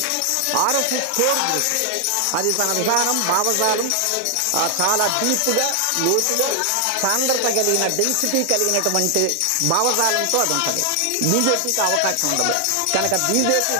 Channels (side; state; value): both; different; correlation 0.00